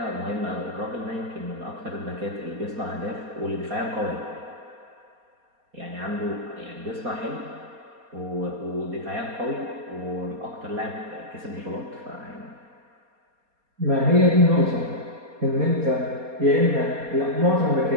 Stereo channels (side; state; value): left; late; 4.2 ms